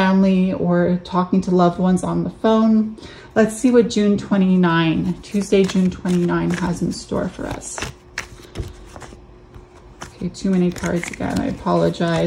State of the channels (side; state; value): both; identical; correlation 1.00